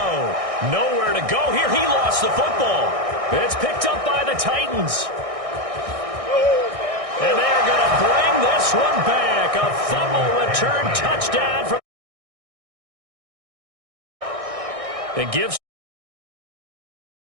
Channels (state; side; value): late; left; 1.6 ms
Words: Nowhere to go here. He lost the football. It's picked up by the Titans. And they're going to bring this one back. A fumble return touchdown from. It gives